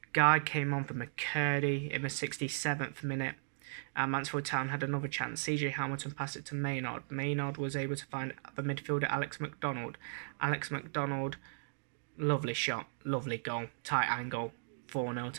Guy came on for McCurdy in the 67th minute, and Mansfield Town had another chance. CJ Hamilton passed it to Maynard. Maynard was able to find the midfielder Alex McDonald. Alex McDonald, lovely shot, lovely goal, tight angle, 4-0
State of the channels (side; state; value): left; silent; digital silence